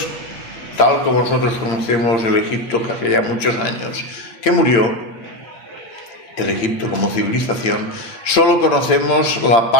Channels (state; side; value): late; right; 8.8 ms